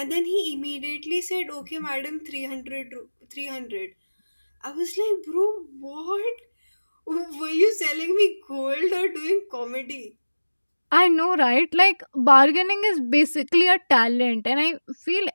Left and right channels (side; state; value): both; inverted; correlation -1.00